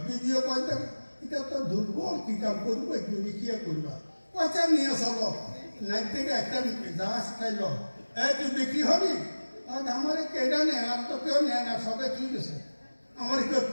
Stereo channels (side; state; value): both; inverted; correlation -1.00